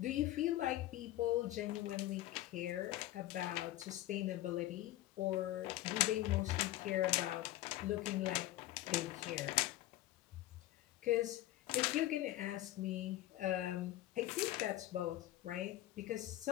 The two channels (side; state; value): right; quieter; 15.3 dB